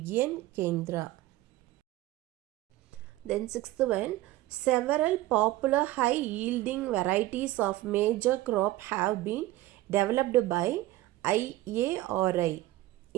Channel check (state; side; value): quieter; left; 16.3 dB